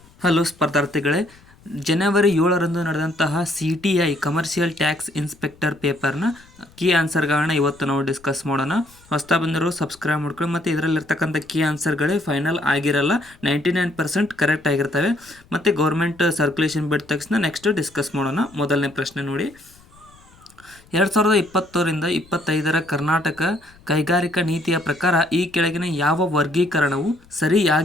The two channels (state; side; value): noise; left; rumble, 27 dB below the sound